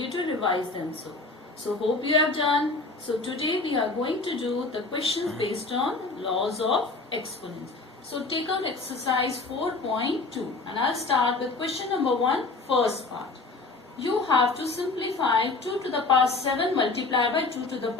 to revise them. So hope you have done. So today we are going to do the questions based on laws of exponents. So take out exercise 4.2 and I'll start with question number 1, first part. You have to simplify 2 to the power 7 multiplied by 2 to the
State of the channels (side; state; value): right; quieter; 3.6 dB